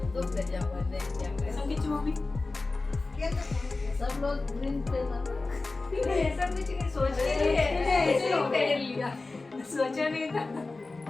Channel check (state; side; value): quieter; right; 3.5 dB